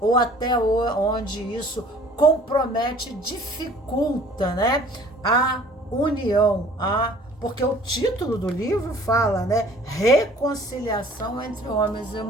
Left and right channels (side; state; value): both; normal; correlation 0.51